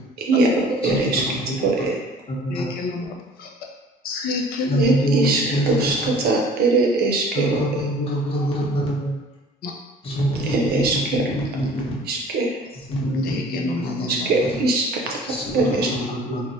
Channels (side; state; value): both; normal; correlation 0.49